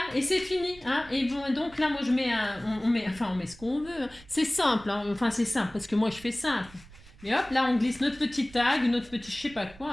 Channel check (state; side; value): noise; right; rumble, 22 dB below the sound